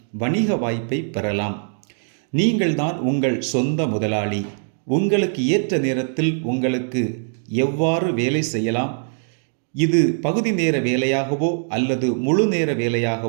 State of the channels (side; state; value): left; silent; 56 dB below the other